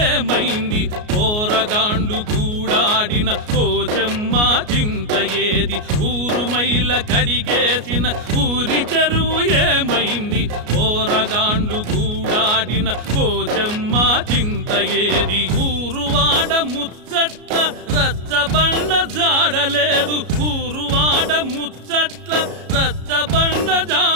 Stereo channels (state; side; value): late; left; 33 ms